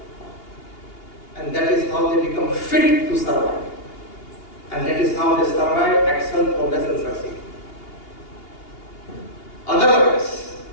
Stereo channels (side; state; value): right; late; 2.8 ms